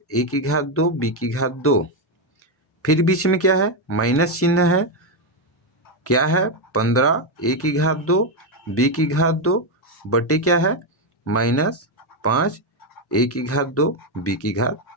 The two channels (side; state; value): both; normal; correlation 0.05